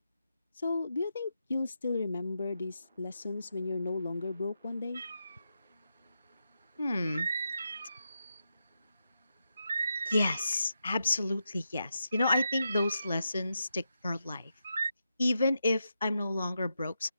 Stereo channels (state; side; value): inverted; both; correlation -0.86